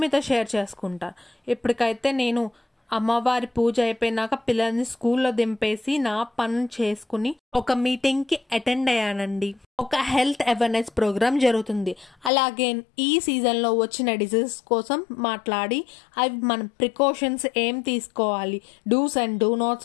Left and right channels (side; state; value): right; drops out; at 12.3 s